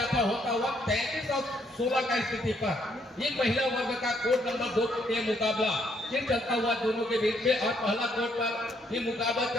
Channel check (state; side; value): normal; both; correlation 0.71